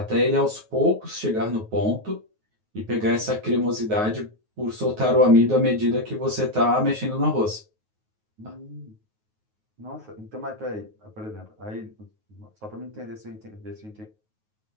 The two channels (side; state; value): left; late; 9.4 ms